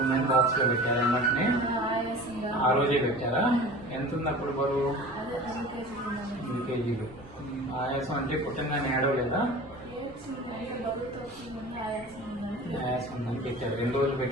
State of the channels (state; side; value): noise; right; rumble, 23 dB below the sound